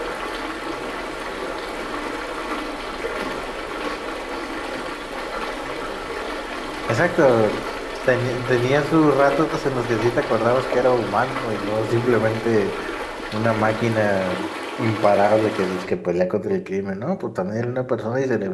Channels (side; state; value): both; identical; correlation 1.00